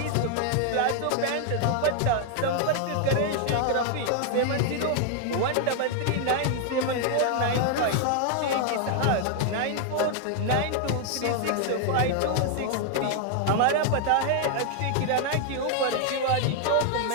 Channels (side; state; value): both; different; correlation 0.00